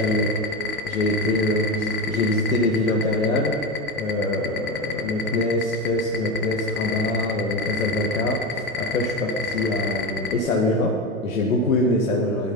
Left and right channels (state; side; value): normal; both; correlation 0.20